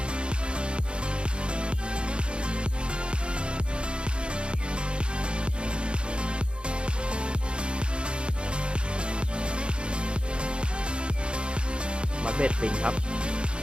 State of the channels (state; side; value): late; left; 0.055 ms